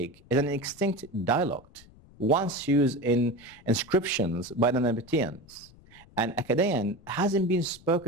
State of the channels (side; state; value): left; noise; rumble, 25 dB below the sound